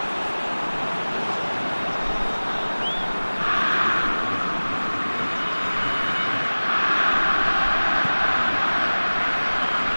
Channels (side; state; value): both; inverted; correlation -1.00